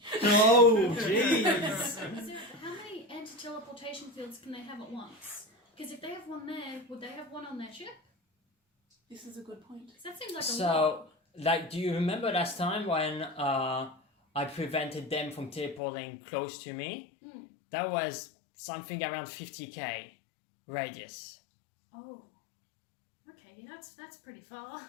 Oh, jeez. Zara, how many anti-teleportation fields can they have at once? Because if they have one there, would they have one on their ship? This is a good point. 'Cause that seems like a lot. So, like, do you remember last time when I prevented them from teleporting close to me? Mm. That was something around 50k radius. Oh. Okay, that's pretty far.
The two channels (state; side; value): drops out; right; at 15.8 s